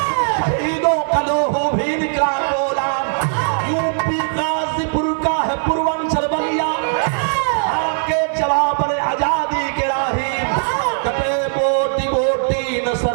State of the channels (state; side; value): silent; left; digital silence